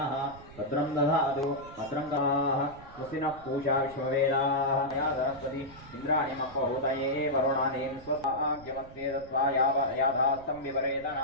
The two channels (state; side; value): noise; right; rumble, 20 dB below the sound